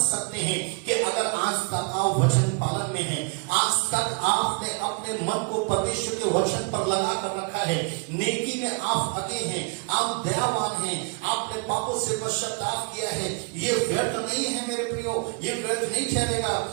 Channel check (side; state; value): left; quieter; 35.6 dB